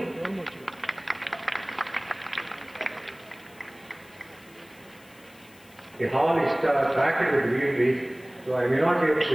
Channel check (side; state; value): left; noise; hiss, 26 dB below the sound